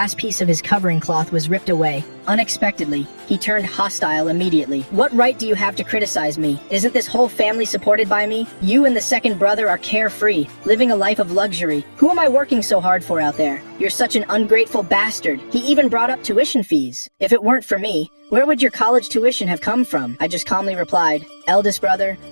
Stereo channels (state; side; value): inverted; both; correlation -1.00